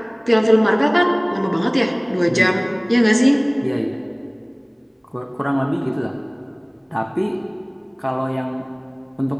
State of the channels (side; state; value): both; identical; correlation 1.00